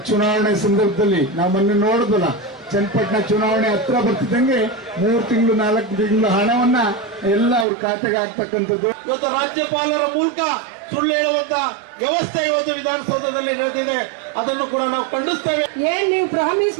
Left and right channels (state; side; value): drops out; left; at 7.7 s